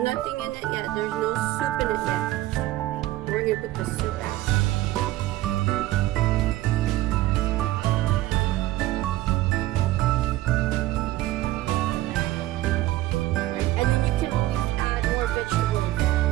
nothing in it yet. There's no soup in it yet. We're gonna put the soup out.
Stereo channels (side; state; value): left; quieter; 16.2 dB